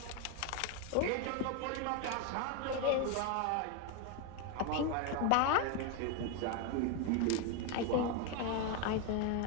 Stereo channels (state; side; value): different; both; correlation 0.02